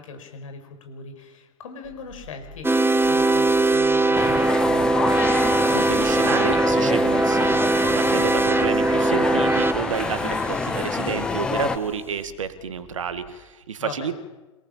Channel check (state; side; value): normal; both; correlation 0.72